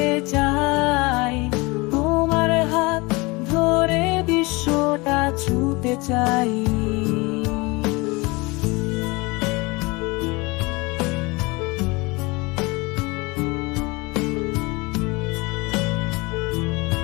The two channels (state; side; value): quieter; right; 25.0 dB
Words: চাই, তোমার হাত ধরে বিশ্বটা ছুঁতে চাই।